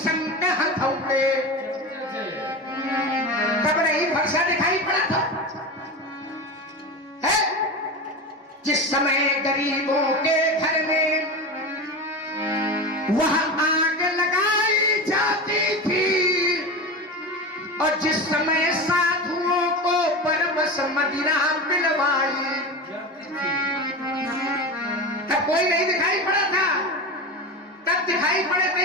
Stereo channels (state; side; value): normal; both; correlation 0.25